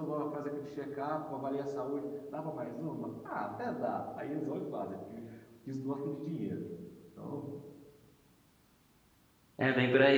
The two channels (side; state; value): both; identical; correlation 1.00